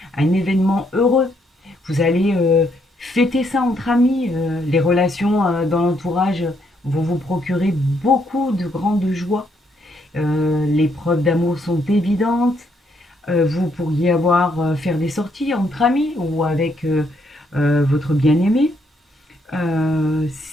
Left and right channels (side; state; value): both; normal; correlation 0.73